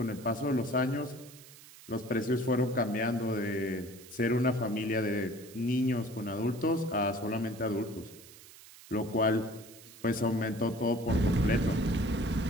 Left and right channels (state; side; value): noise; right; hiss, 20 dB below the sound